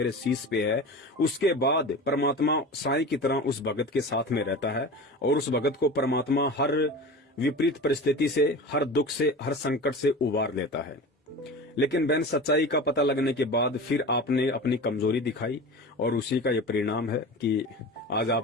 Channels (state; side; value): normal; both; correlation 0.32